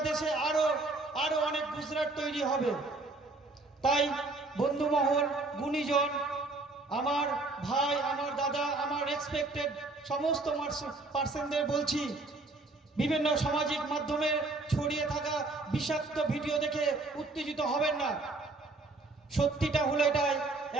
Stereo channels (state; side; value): quieter; left; 3.3 dB